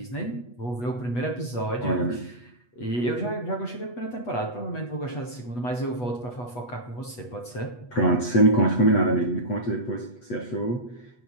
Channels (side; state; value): right; late; 8.2 ms